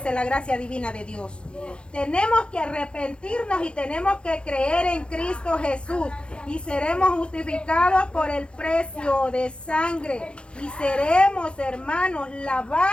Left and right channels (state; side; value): late; right; 0.058 ms